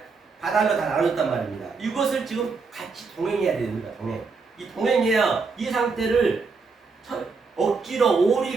바달로 다 나눴단 말입니다. 이것을 지금 같이 동행해야 됩니다. 이 동행해야 이 상태를 억지로 오리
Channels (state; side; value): quieter; left; 4.6 dB